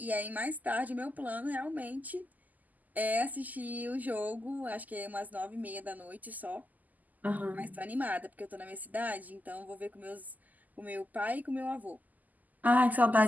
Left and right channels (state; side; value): late; left; 0.081 ms